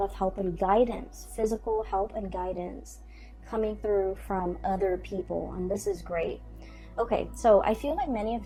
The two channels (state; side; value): identical; both; correlation 1.00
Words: of help and guidance, physical help and guidance coming through from other people, and this is great. Okay, so I feel like many of